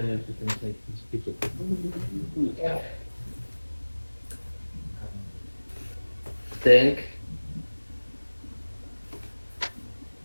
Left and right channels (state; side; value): inverted; both; correlation -1.00